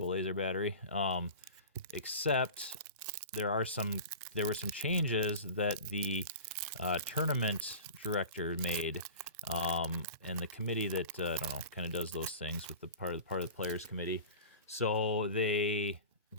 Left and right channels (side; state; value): both; inverted; correlation -0.35